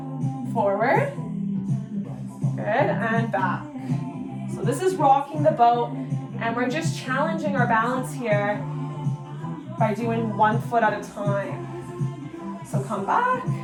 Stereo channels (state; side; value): identical; both; correlation 1.00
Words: Forward. Good, and back. So this is rocking the boat, and we're just challenging our balance here by doing 1 foot at a time. So come back,